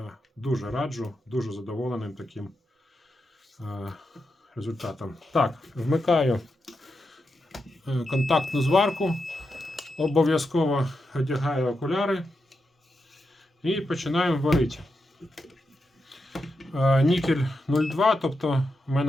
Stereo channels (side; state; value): both; normal; correlation 0.86